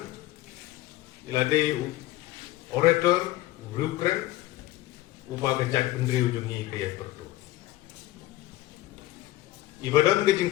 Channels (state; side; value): quieter; right; 16.4 dB